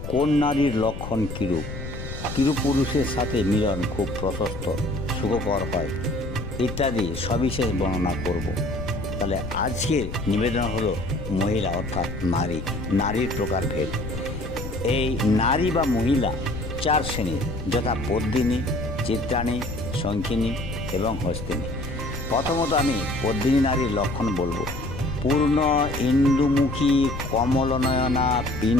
কোন নারীর লক্ষণ কীরূপ, কিরূপ পুরুষের সাথে মিলন খুব প্রশস্ত সুখকর হয় ইত্যাদি সবিশেষ বর্ণনা করব। তাহলে আজকের নিবেদন হলো মহিলা অর্থাৎ নারী, নারীর প্রকারভেদ। এই নারী বা মহিলা চার শ্রেণীর, যথা পদ্মিনী, চিত্রাণী, শঙ্খিনী এবং হস্তিনী। প্রথমত আমি পদ্মিনী নারীর লক্ষণ বলবো। পূর্ণ ইন্দুমুখী, কমলনয়না,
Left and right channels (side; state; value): left; noise; rumble, 8 dB below the sound